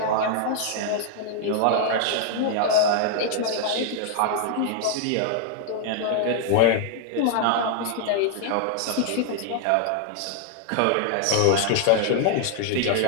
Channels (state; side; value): different; both; correlation 0.00